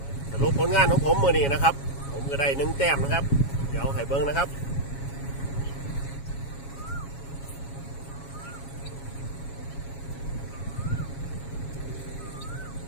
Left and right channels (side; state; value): right; late; 7.2 ms